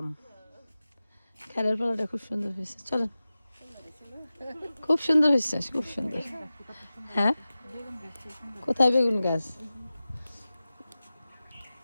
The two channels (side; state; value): both; inverted; correlation -0.96